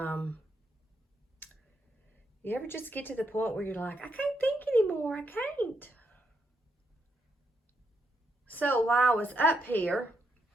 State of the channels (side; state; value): both; normal; correlation 0.79